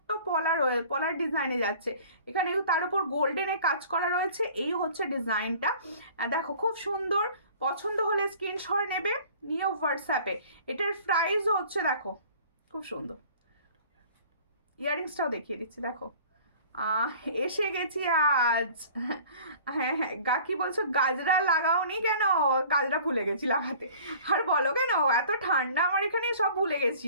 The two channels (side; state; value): both; inverted; correlation -0.48